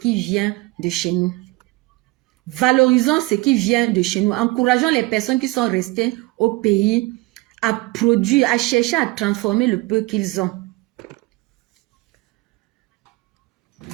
vient de chez nous. Valorisons ce qui vient de chez nous. Encourageons les personnes qui sont restées au pays à produire, à chercher à transformer le peu qu'ils ont.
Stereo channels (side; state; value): left; quieter; 21.7 dB